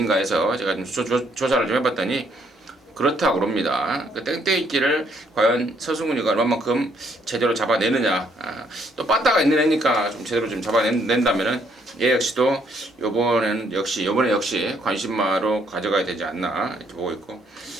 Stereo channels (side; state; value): both; normal; correlation 0.68